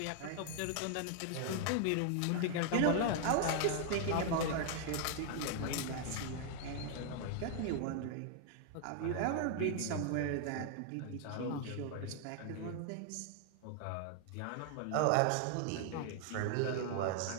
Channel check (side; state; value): both; different; correlation 0.00